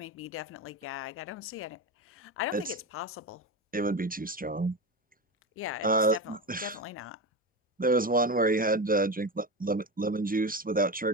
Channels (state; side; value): normal; both; correlation 0.21